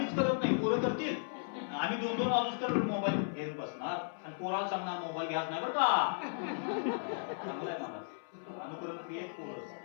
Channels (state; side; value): silent; right; 54 dB below the other